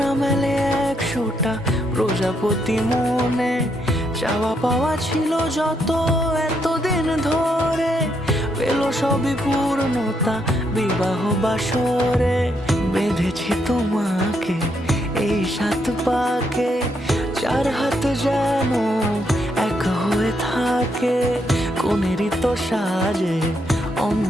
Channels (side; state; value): both; normal; correlation 0.77